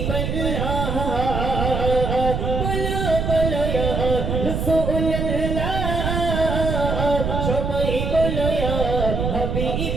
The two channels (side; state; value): right; noise; rumble, 1 dB below the sound